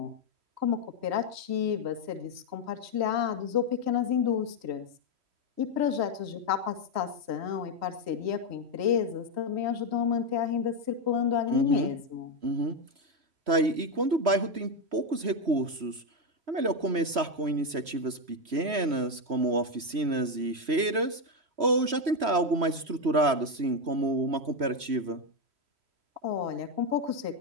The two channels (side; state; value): left; late; 3.1 ms